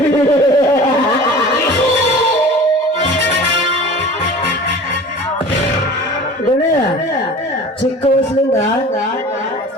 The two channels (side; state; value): both; normal; correlation 0.40